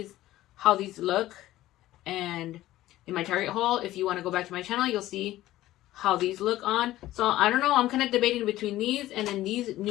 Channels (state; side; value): quieter; right; 15.3 dB